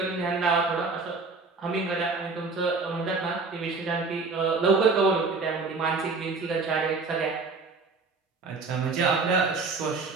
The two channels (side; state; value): left; quieter; 4.2 dB